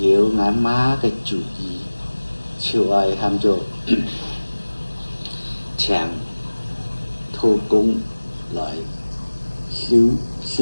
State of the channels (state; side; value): inverted; both; correlation -1.00